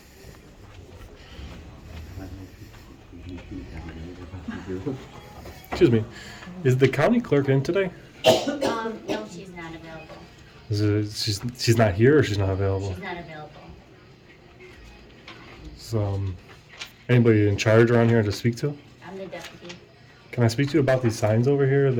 Excuse me. Is the county clerk in today? No, she's not available. She's not here or she's not available? She's not available. So, anybody in charge around here to speak to? I'm the deputy. Can I speak to you about these signs over here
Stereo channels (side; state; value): both; identical; correlation 1.00